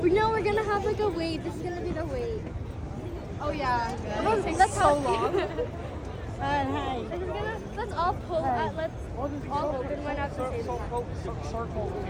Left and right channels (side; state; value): both; identical; correlation 1.00